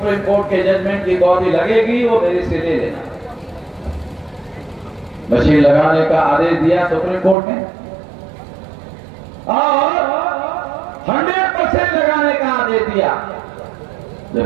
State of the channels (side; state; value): left; drops out; at 7.4 s